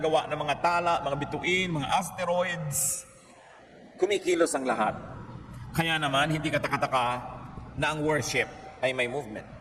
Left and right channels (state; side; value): identical; both; correlation 1.00